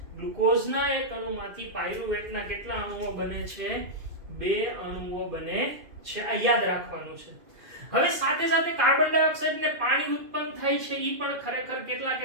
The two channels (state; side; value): late; left; 2.5 ms